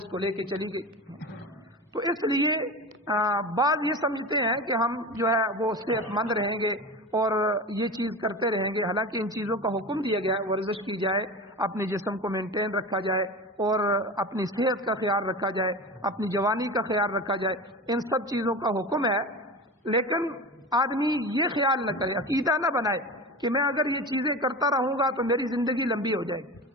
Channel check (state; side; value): normal; both; correlation 0.29